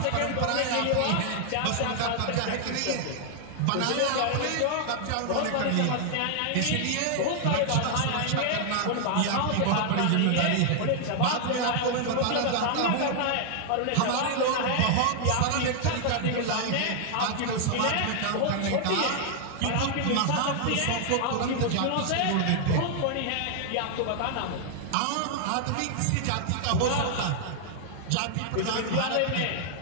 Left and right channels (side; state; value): both; different; correlation 0.00